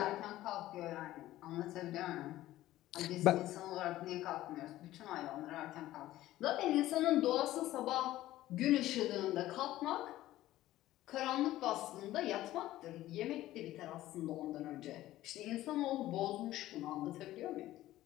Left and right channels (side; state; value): right; quieter; 15.1 dB